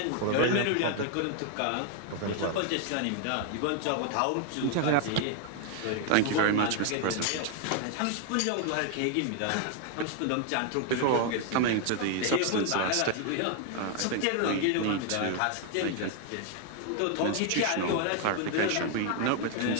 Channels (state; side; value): different; both; correlation 0.00